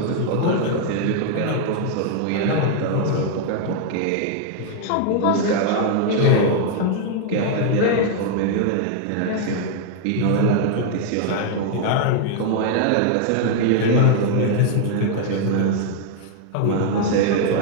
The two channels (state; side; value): different; both; correlation 0.00